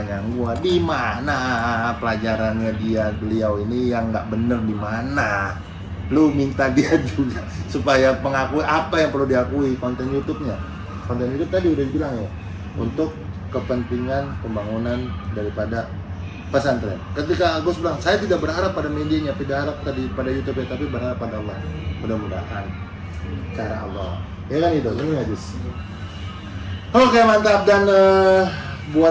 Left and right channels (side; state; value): both; identical; correlation 1.00